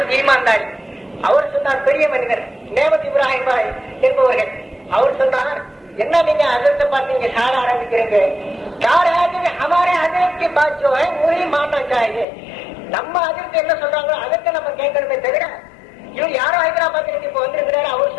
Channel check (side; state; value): right; drops out; at 12.2 s